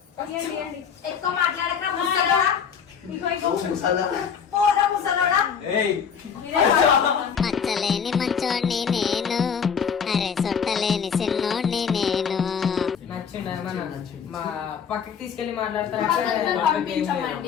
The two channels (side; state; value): right; quieter; 7.0 dB